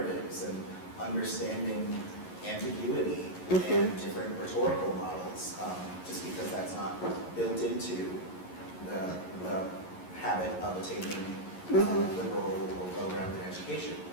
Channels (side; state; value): right; late; 11 ms